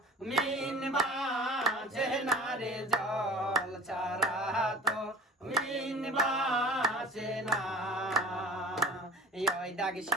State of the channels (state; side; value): normal; both; correlation 0.41